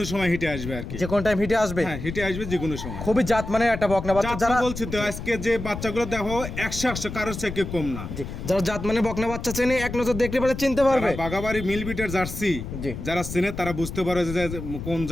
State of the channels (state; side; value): noise; left; rumble, 8 dB below the sound